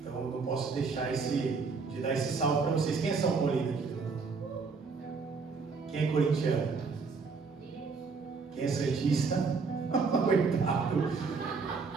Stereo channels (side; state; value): left; quieter; 4.8 dB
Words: eu não posso deixar de dar esse salve para vocês. Quem é São Paulino aqui? Quem é corintiano? Quem é santista? Coitado.